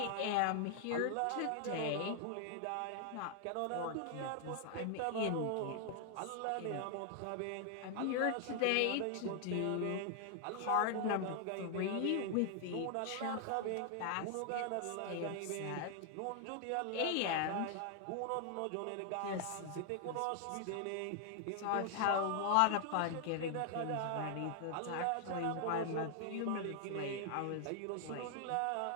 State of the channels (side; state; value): both; different; correlation 0.00